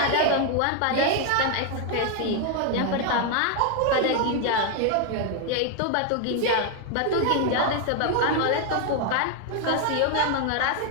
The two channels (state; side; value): different; both; correlation 0.01